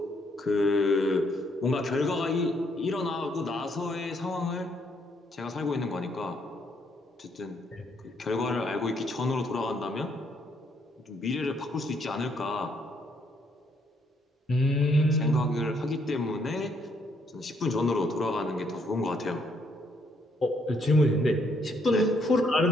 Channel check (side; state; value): both; normal; correlation 0.71